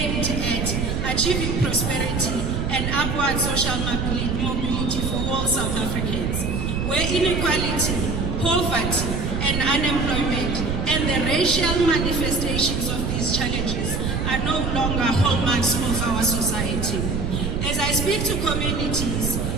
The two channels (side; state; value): right; noise; rumble, 1 dB below the sound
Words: at achieving prosperity and upward social mobility for all South Africans, where inequality, poverty, and unemployment and the racial manifestations of these challenges are no longer hallmarks of our society. As I speak to communities